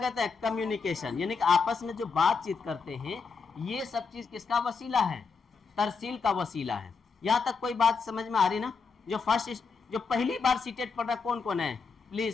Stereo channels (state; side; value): quieter; right; 5.1 dB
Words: हैं? कम्युनिकेशन, यानी कि आपस में जो बातचीत करते हैं, ये सब चीज़ किसका वसीला है? तरसील का वसीला है। यहाँ तक कोई बात समझ में आ रही ना? जो पहली बार सीटेट पढ़ रहा कौन कौन है?